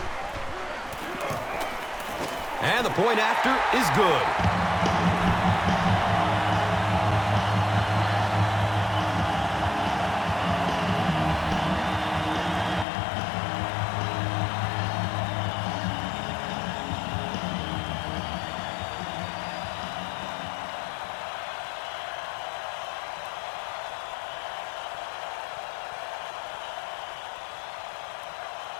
And the point after is good.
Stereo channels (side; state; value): right; drops out; at 12.9 s